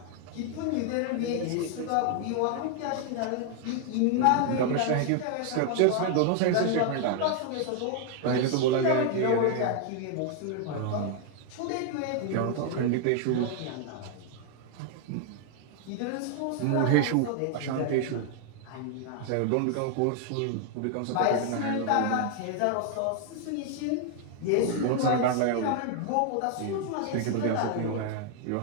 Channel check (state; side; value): different; both; correlation 0.00